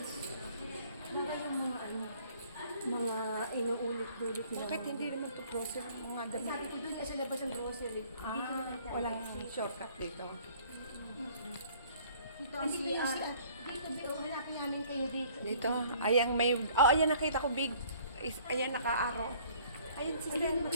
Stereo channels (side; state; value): both; inverted; correlation -0.56